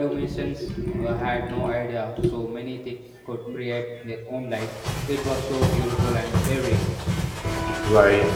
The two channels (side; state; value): both; identical; correlation 1.00